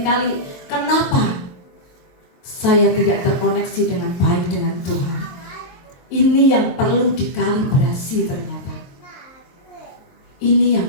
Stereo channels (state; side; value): late; right; 23 ms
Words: kenapa saya tidak terkoneksi dengan baik dengan Tuhan. Ini yang perlu dikalibrasi ternyata. Ini yang